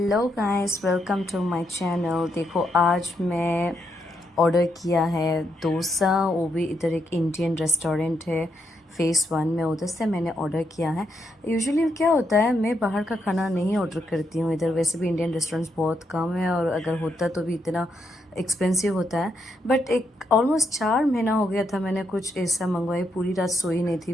guys, welcome to my channel. देखो, आज मैं ऑर्डर किया है डोसा। वो भी इधर एक इंडियन रेस्टोरेंट है फेस 1 में, उधर से मैंने ऑर्डर किया है। यूजुअली क्या होता है, मैं बाहर का खाना नहीं ऑर्डर करती हूँ इधर। वैसे भी इंडियन रेस्टोरेंट्स बहुत कम है, और अगर होता तो भी इतना एक्सपेंसिव होता है। बट एक ऑलमोस्ट 4 महीना हो गया था मैंने कुछ ऐसा मंगवाई। पूरी रात सोई नहीं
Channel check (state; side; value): normal; both; correlation 0.79